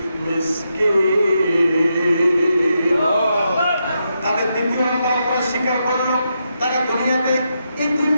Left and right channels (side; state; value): both; inverted; correlation -0.83